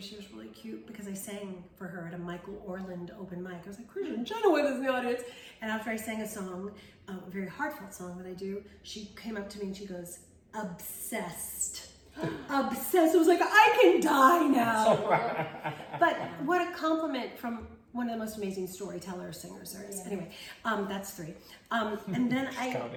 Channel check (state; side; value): identical; both; correlation 1.00